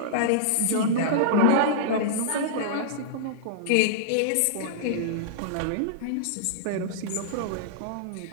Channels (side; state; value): both; different; correlation -0.02